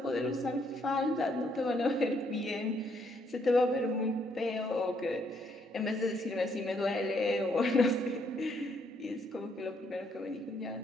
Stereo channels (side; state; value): both; normal; correlation 0.71